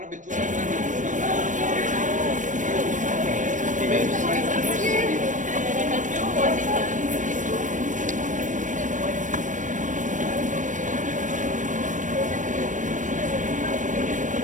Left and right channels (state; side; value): late; left; 0.37 ms